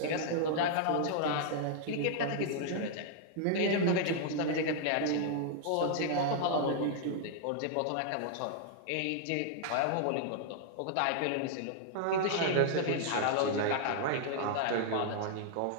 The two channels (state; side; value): different; both; correlation -0.01